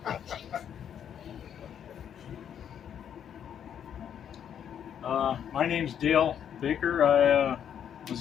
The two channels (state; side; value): quieter; right; 8.9 dB